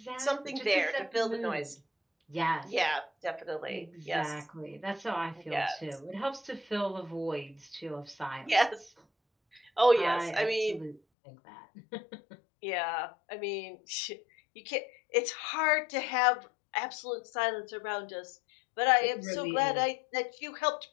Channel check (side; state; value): right; drops out; at 11.0 s